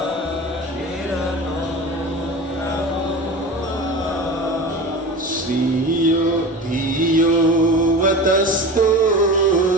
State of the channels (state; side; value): normal; both; correlation 0.32